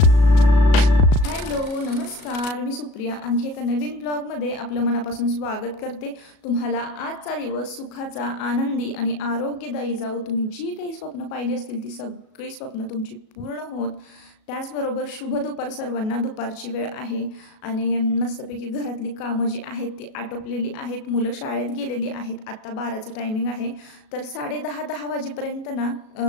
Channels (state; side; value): late; right; 37 ms